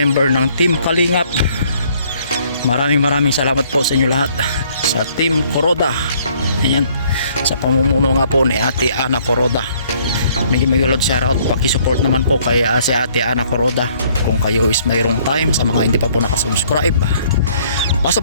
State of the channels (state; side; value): inverted; both; correlation -0.62